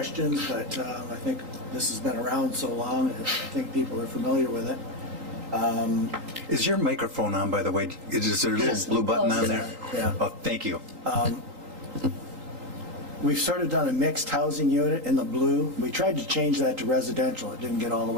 but I think this has been around so long, I think people are familiar with it. Is your microphone on, by the way? Is there a little blue button on there? Yeah. Oh, thank you. we've sort of done a mixed housing unit in the blue. We tried to change that to residential. It didn't get all the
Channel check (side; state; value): left; late; 3.8 ms